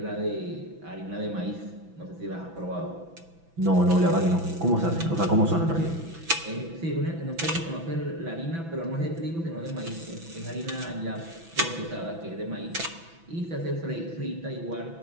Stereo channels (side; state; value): left; late; 6.0 ms